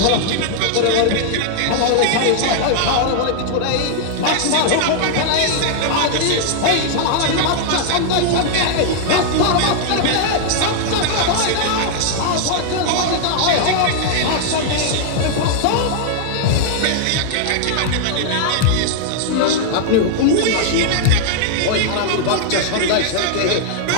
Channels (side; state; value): both; different; correlation 0.00